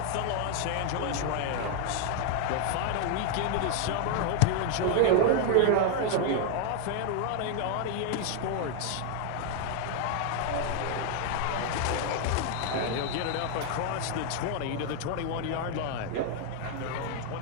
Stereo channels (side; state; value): both; different; correlation 0.00